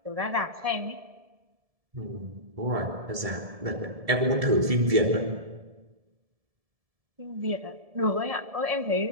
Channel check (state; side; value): late; left; 1.7 ms